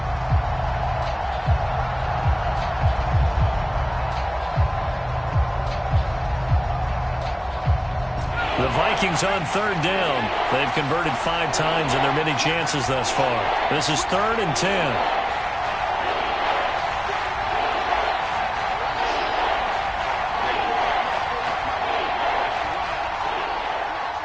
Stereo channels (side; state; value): both; identical; correlation 1.00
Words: The Vikings on 3rd down. They've converted 5 times in their many chances thus far. This is 3rd and 10.